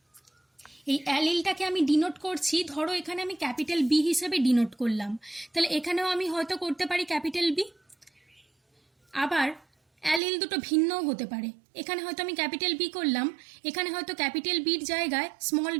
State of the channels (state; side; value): drops out; left; at 10.2 s